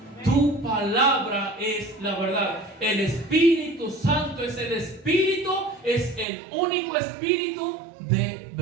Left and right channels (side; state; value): left; drops out; at 6.2 s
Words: tu palabra es la verdad. El Espíritu Santo es el Espíritu, es el único Espíritu de